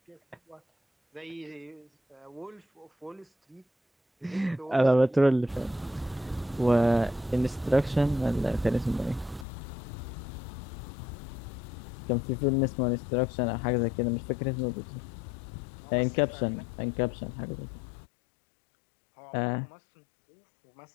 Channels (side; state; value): right; drops out; at 9.5 s